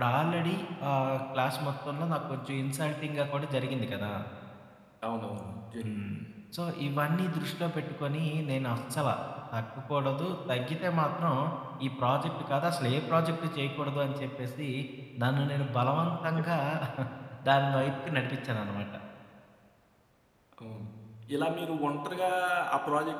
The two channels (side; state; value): both; identical; correlation 1.00